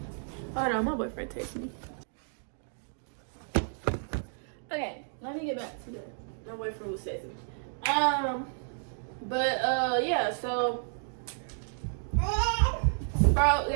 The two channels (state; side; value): silent; left; digital silence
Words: hold on, my boyfriend texted me. Okay, let me get back to my boyfriend was texting me. But yeah, so bro,